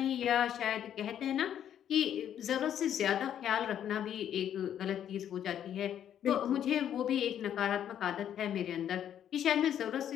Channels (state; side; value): quieter; right; 9.9 dB